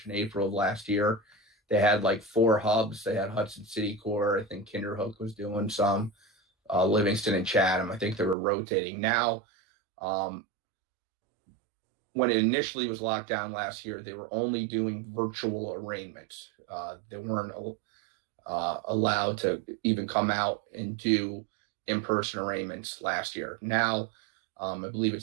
and April of last year, they had like 4 hubs. They had Hudson City Court. I think Kinderhook was doing some, Livingston and Chatham. I think they were rotating. Now, when it initially was locked down last year, they were only doing virtual arraignments. They weren't allowed to even come out and do in-person arraignments last year. Now, I believe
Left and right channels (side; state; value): left; drops out; at 8.3 s